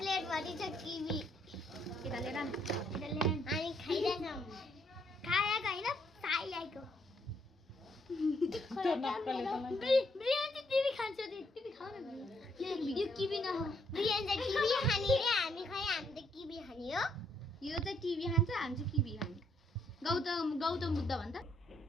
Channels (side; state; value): both; normal; correlation 0.72